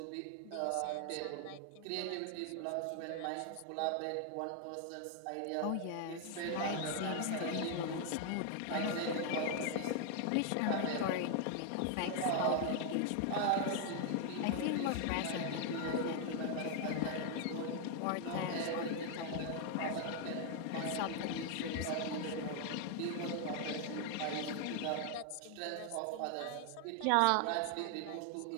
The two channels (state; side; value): different; both; correlation 0.00